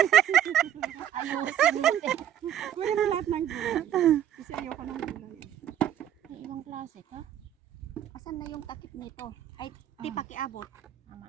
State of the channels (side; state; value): left; quieter; 10.5 dB